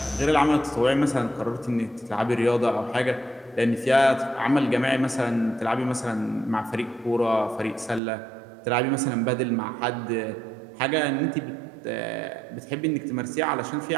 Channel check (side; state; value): left; drops out; at 8.0 s